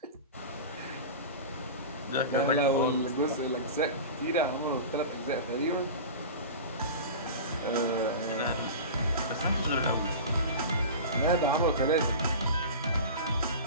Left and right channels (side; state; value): both; inverted; correlation -0.31